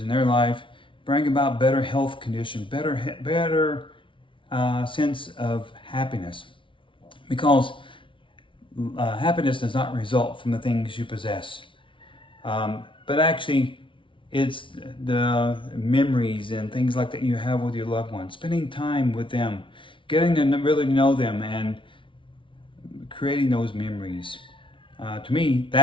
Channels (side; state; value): right; late; 0.25 ms